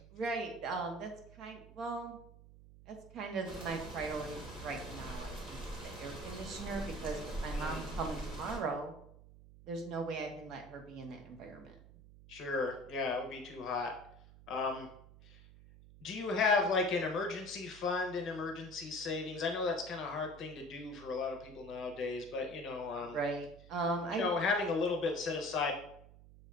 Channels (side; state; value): right; noise; hum, 19 dB below the sound